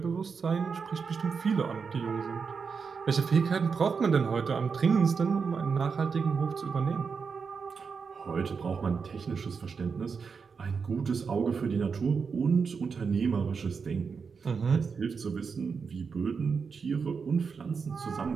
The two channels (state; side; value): quieter; left; 5.6 dB